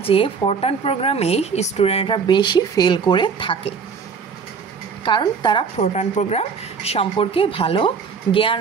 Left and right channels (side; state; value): left; quieter; 5.8 dB